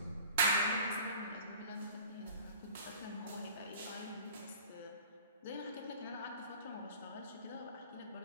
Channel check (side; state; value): both; inverted; correlation -0.45